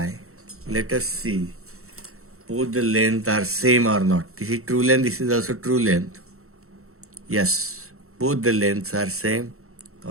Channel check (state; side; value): late; left; 0.63 ms